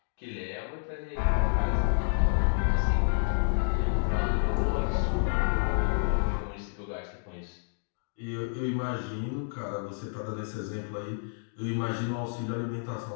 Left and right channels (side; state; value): right; silent; digital silence